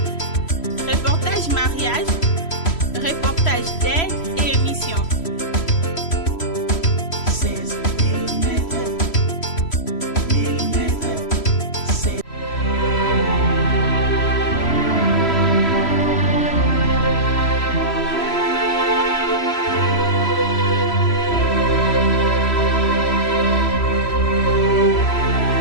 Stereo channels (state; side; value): late; right; 3.0 ms